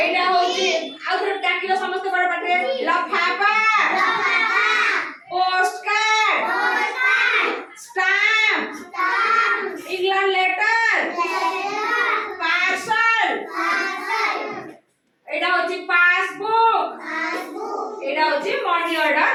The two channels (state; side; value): identical; both; correlation 1.00